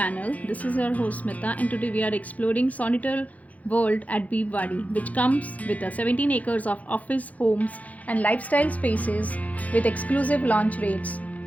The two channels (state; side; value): late; right; 0.072 ms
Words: This is your host Smita and today we are exploring Solitaire World at Bibwewadi, which comes with 17 acres of office, homes and lifestyle spaces with exclusive launch rates